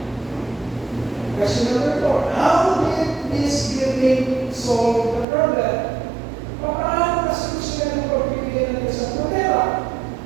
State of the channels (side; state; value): left; drops out; at 5.2 s